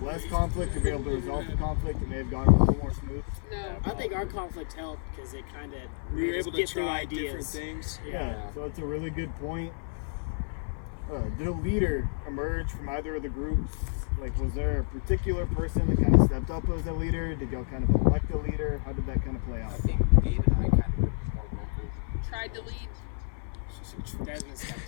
less conflict or be able to resolve the conflict, it may have gone a little more smooth? No. I think our conflict helped because it kind of We were able to get through try ideas. different things. Yeah. So that's a really good point. Did a leader emerge from either of the groups? Like, was there a particular person that kind of stepped up as a leader? Did y'all kind of elect a leader? How did that kind of play out? I think Gabe and I kind of were more vocal. Tried to lead. Desmond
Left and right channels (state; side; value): silent; right; 56 dB below the other